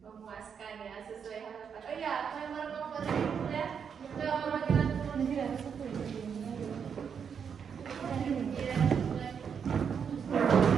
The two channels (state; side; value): quieter; left; 7.0 dB